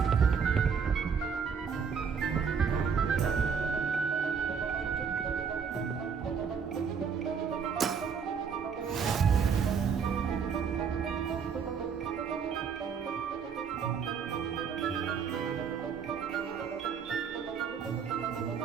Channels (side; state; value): left; quieter; 6.4 dB